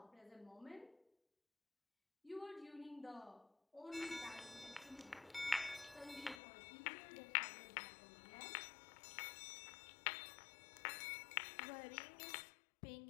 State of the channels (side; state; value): right; drops out; at 6.4 s